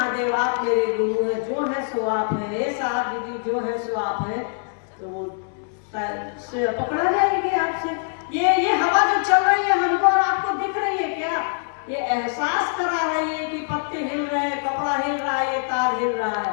आप मेरे गुरु है, जो है सो आप है, हे साहब दीदी जो है सो आप है, तो पकड़ा जाएगी आपसे। ये हवा जो चल रही है हमको और आपको दिख रही है क्या? ये एहसास करा रही है कि पत्ते हिल रहे हैं, कपड़ा हिल रहा है, ये तार हिल रहा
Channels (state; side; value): silent; right; digital silence